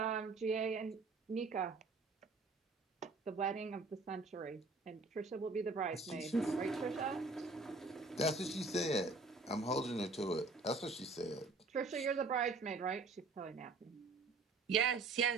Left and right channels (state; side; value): quieter; left; 3.7 dB